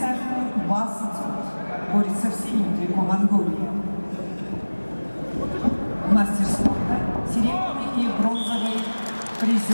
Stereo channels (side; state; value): both; inverted; correlation -1.00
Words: Басыцут борется в синем трико Монголии. Мастер спорта, серебряный и бронзовый